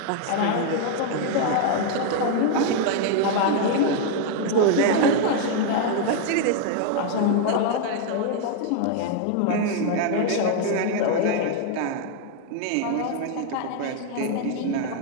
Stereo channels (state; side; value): different; both; correlation 0.00